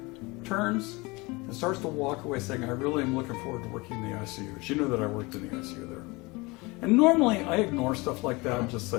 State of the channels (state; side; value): quieter; right; 24.6 dB